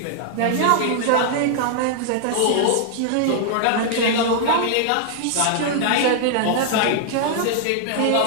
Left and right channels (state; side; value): different; both; correlation -0.01